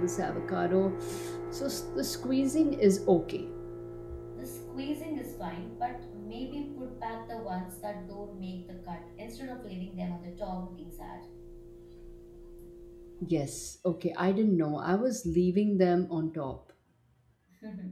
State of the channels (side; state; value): both; identical; correlation 1.00